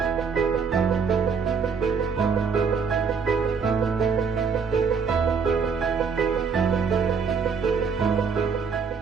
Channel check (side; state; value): left; quieter; 5.7 dB